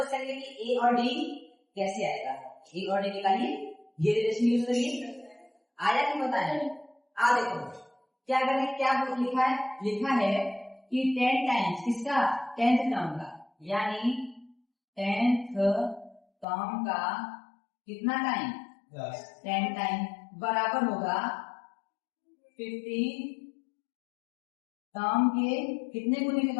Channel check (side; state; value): right; drops out; at 16.4 s